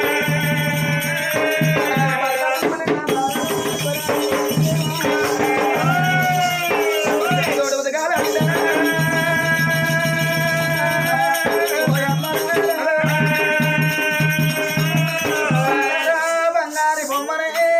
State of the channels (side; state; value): both; identical; correlation 1.00